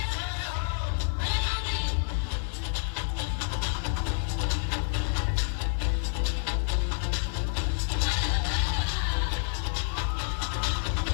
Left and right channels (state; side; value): silent; right; 59 dB below the other